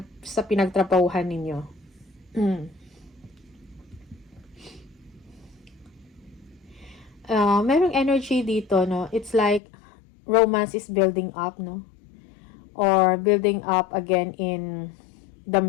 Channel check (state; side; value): drops out; right; at 9.6 s